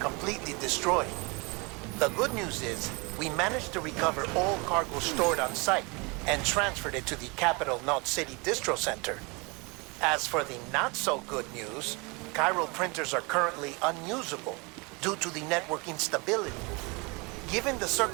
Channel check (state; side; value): quieter; left; 28.5 dB